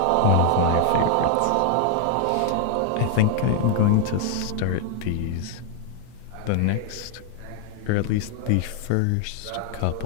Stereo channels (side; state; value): both; different; correlation 0.00